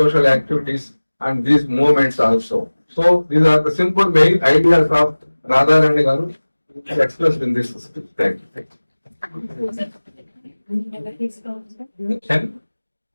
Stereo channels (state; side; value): inverted; both; correlation -1.00